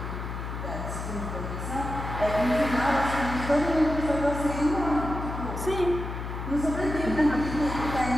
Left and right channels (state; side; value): noise; left; hum, 6 dB below the sound